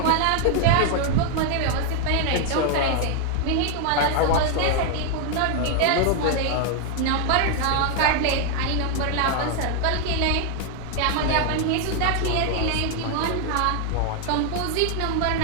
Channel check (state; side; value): different; both; correlation 0.00